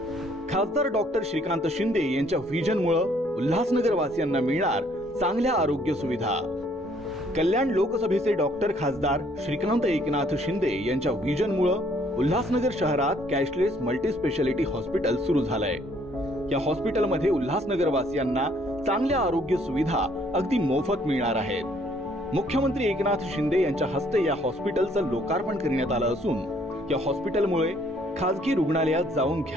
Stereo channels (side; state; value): both; normal; correlation 0.64